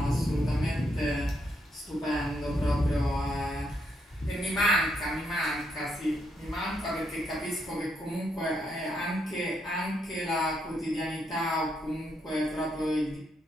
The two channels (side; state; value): both; normal; correlation 0.77